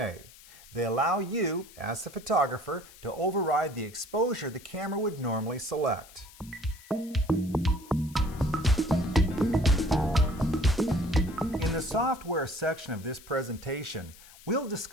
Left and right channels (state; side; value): noise; left; hiss, 21 dB below the sound